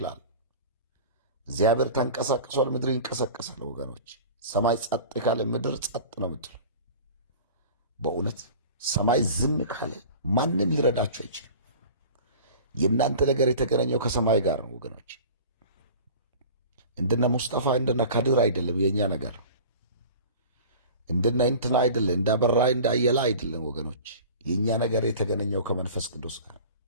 እግዚአብሔር ተንቀሳቅሷል፣ ምድር ይንቀሳቀሳል። ወገኖች ሰማይ ጸጥ ካለ ምድር ጸጥ ነው የምትለው። በእውነት ሰማይ ዝም ካለ ማንም ሊረዳችሁ አይችልም። የእናንተ ነገር የተገናኘው ከሰማይ ጋር ነው ወገኖች። እንደነ ሙስጠፋ እንደነ ካድር አይደለም የእኛ ነገር። እንደነ እንትና አይደለም፣ እንዳበራ እንዳየላ አይደለም ወገኖች። የእኛ ነገር የተገናኘው ከመንፈስ ቅዱስ ጋር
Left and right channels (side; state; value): both; inverted; correlation -0.40